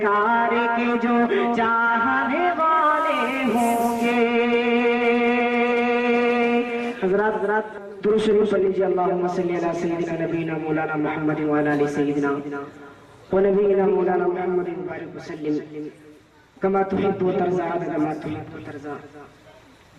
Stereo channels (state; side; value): identical; both; correlation 1.00